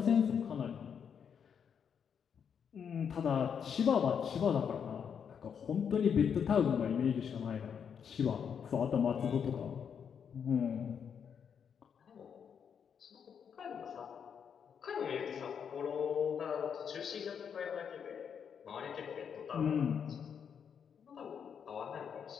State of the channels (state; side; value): quieter; right; 7.4 dB